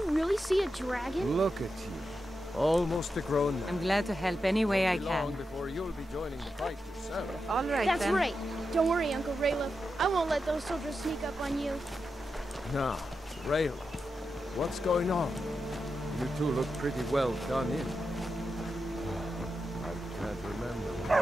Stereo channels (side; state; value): both; normal; correlation 0.88